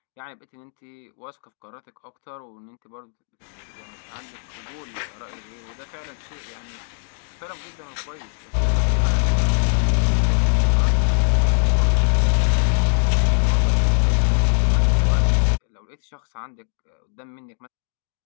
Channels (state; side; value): silent; right; digital silence